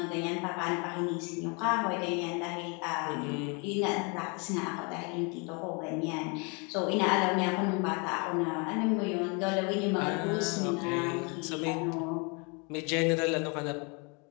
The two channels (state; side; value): quieter; right; 32.9 dB